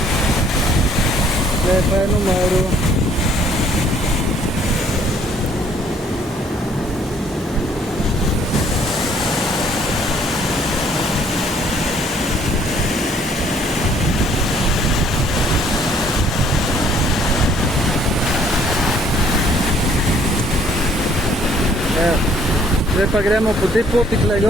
Pa je numeru. Zdaj pa gremo po tej poti tukaj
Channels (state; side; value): normal; both; correlation 0.62